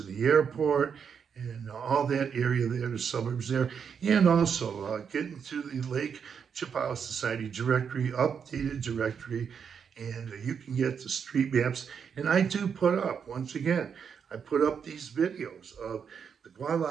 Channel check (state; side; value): quieter; left; 6.9 dB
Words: the airport, and all that area there, the suburbs there. And also get into the Lake Chapala Society directory, updated directory, and you can get the street maps. And I do put up, once again, I put up these videos of the